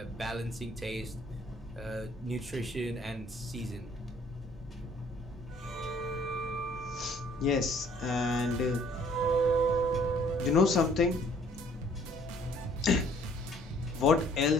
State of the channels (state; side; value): normal; both; correlation 0.59